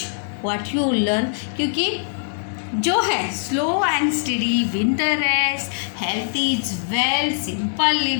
what you learn. क्योंकि जो है slow and study, win the rest, health is well, simple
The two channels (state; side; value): silent; right; digital silence